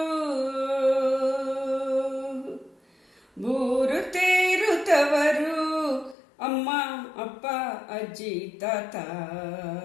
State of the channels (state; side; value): drops out; right; at 6.2 s